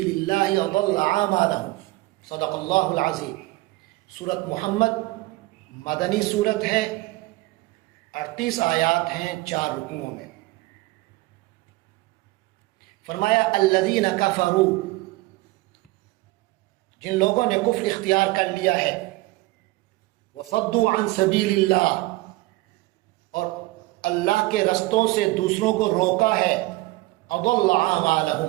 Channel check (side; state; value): left; quieter; 20.4 dB